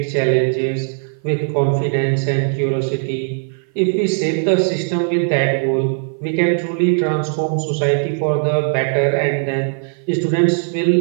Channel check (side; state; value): left; silent; 55 dB below the other